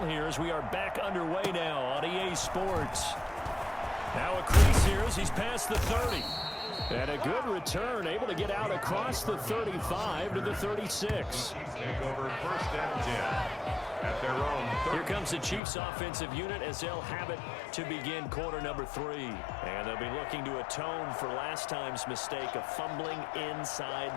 here as we are back underway now on EA Sports. Now a crease here as he's past the 30. And a good return, able to get out across the 35 to the 36. Take over first and 10 at their own 30. Here comes the Chiefs offensive unit as they'll have it to begin quarter number 3. And they'll be looking to atone for last time's mistake of fumbling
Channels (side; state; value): right; drops out; at 15.6 s